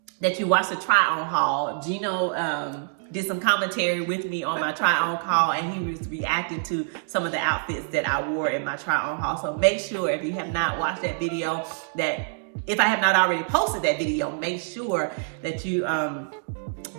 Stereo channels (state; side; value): silent; left; 61 dB below the other